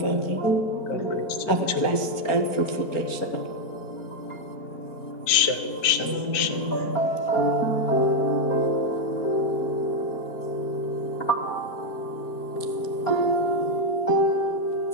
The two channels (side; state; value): right; late; 4.4 ms